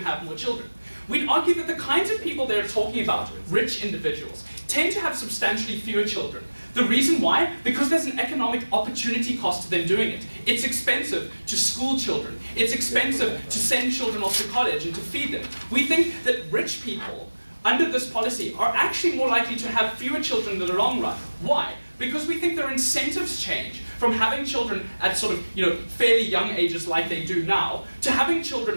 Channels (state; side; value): inverted; both; correlation -1.00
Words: more children. We'd argue that the kinds of people they're talking about, rich individuals, tend to have substantially fewer children. The reason why? Because there's an economic opportunity cost to them doing it. It's expensive to school children. It's expensive to send children off to college and to feed them. We think that rich people, under this policy, are actually more likely to have fewer children in the long run. Why? Because we think their incentives change from having children at sort of, fairly young ages like they do now, to having